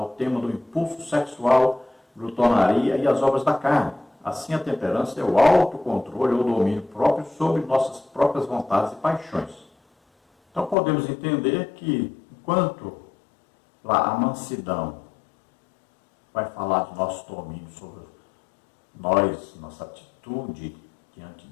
tema do impulso sexual, glutonaria e as obras da carne. Assim, a temperança é o autocontrole ou domínio próprio sobre nossas próprias vontades e paixões. Então, podemos entender que, enquanto lá a mansidão vai falar do nosso domínio sobre nós, nossa atitude diante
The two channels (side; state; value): right; drops out; at 10.8 s